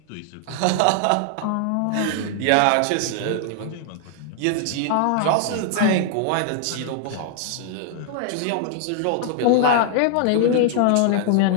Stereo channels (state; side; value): different; both; correlation -0.01